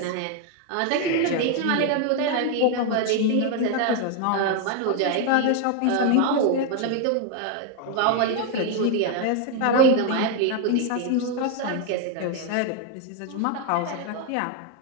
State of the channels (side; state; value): both; different; correlation 0.01